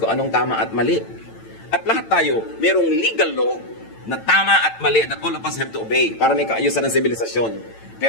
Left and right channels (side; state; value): right; late; 9.0 ms